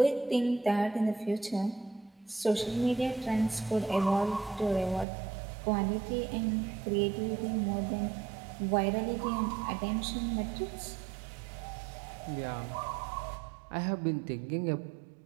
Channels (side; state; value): left; drops out; at 5.1 s